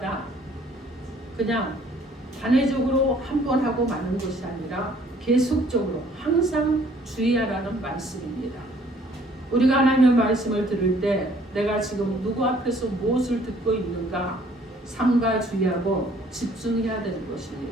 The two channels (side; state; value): both; normal; correlation 0.59